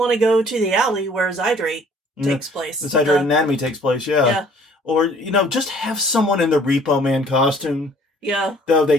to go to the alley where Zydrate takes place. The Zydrate Anatomy takes place, yeah. Or, just have someone in the Repo Man costume. Yeah. Though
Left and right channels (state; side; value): normal; both; correlation 0.55